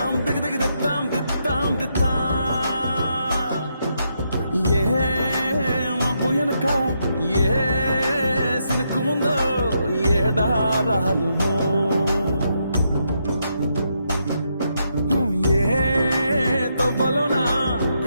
దిగి దిగి దిద్దాం దిద్దాం దిద్దా. ఏ మబ్బు వెనక ఏ సినుకు ఉందో ఏడారాలునో, ఏ తవ్వలోనా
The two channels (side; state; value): both; inverted; correlation -0.79